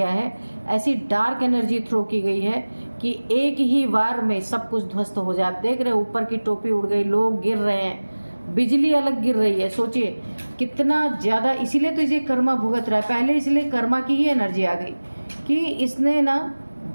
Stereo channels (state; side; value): inverted; both; correlation -1.00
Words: है, ऐसी डार्क एनर्जी थ्रो की गई है कि एक ही वार में सब कुछ ध्वस्त हो जाए। आप देख रहे हैं ऊपर की टोपी उड़ गई, लोग गिर रहे हैं, बिजली अलग गिर रही है। सोचिए कितना ज़्यादा, इसीलिए तो इसे कर्मा भुगत रहा है। पहले इसलिए कर्मा की ही एनर्जी आ गई कि इसने ना